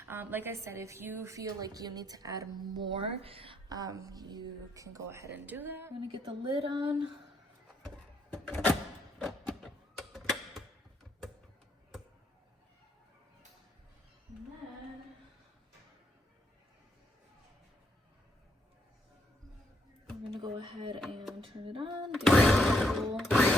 Like I said, if you feel like you need to add more, you can go ahead and do that. I'm going to get the lid on. gonna go ahead and turn it on. Give it a little...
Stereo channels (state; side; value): normal; both; correlation 0.74